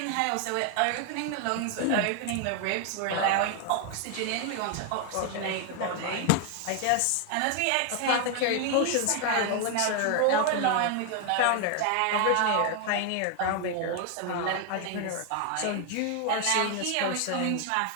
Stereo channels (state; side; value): different; both; correlation 0.01